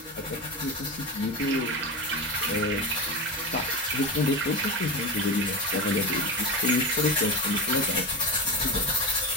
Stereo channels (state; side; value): normal; both; correlation 0.21